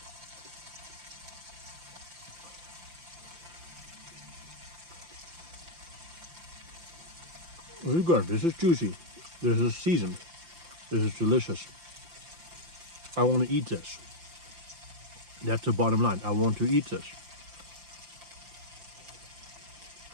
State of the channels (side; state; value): left; late; 5.8 ms